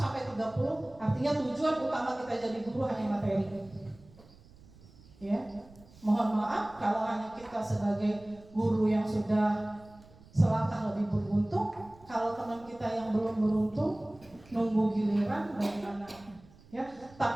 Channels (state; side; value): noise; right; rumble, 24 dB below the sound